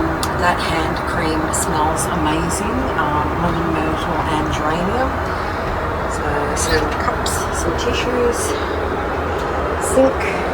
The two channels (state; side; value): identical; both; correlation 1.00